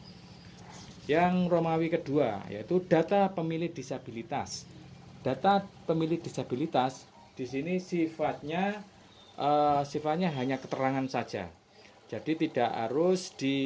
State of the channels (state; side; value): identical; both; correlation 1.00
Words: Yang Romawi kedua yaitu data pemilih disabilitas. Data pemilih disabilitas di sini sifatnya hanya keterangan saja. Jadi tidak harus